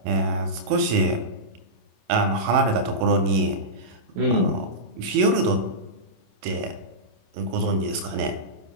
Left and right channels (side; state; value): left; late; 27 ms